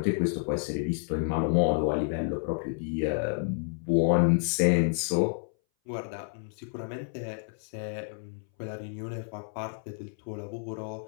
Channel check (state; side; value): silent; right; 58 dB below the other